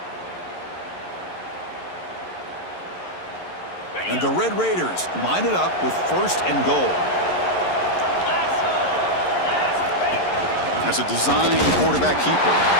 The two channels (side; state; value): right; late; 11 ms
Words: And the Red Raiders line it up with first and goal. As a design quarterback keeper.